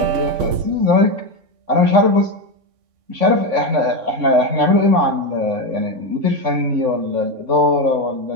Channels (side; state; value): left; late; 3.6 ms